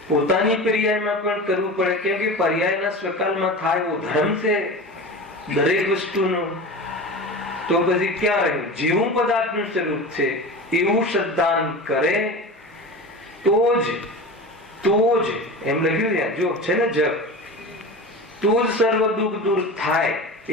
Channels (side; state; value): both; normal; correlation 0.30